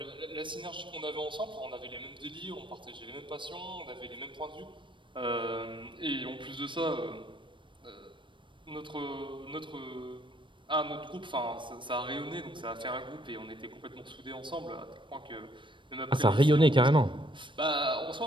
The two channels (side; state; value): left; late; 0.24 ms